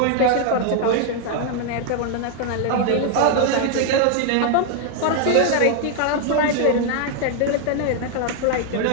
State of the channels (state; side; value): different; both; correlation 0.00